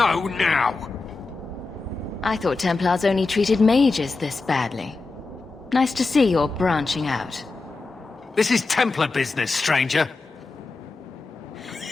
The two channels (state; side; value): quieter; right; 3.8 dB